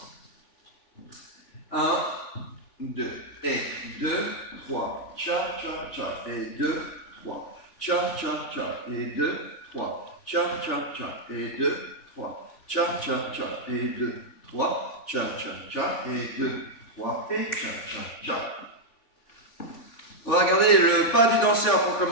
1, 2, et 2, 3. Cha, cha, cha, et 2, 3. Cha, cha, cha, et 2, 3. Cha, cha, cha, et 2, 3. Cha, cha, cha, et 2, 3. Cha, cha, cha, et 2, 3. Et cha, cha, cha. On va regarder le pas du danseur pour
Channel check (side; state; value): right; late; 3.5 ms